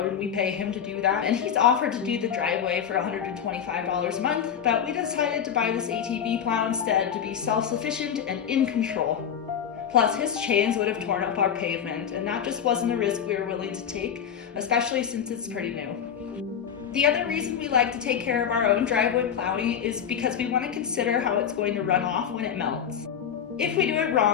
and we pay him to do that. And he's offered to do the driveway for $125 a month, but we decided to buy this ATV plow instead to be self-sufficient and in control. Plus, his chains would have torn up our pavement, and that just wasn't a risk we were willing to take, especially since it's pretty new. The other reason we like to take care of our own driveway plowing is because we want to consider how it's going to run off when it melts. If we do it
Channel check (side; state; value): right; quieter; 8.3 dB